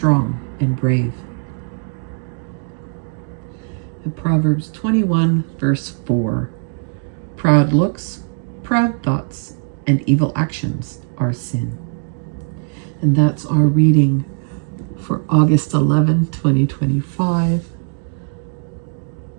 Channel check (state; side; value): silent; left; 58 dB below the other